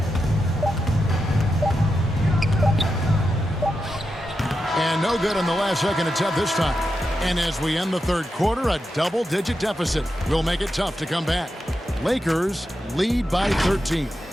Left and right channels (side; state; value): both; normal; correlation 0.88